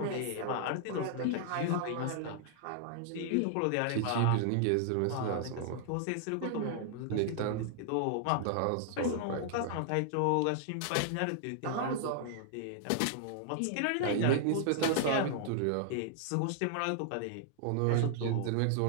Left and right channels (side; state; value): both; different; correlation -0.01